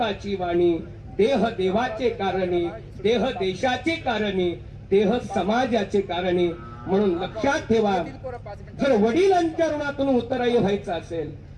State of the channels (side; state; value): both; identical; correlation 1.00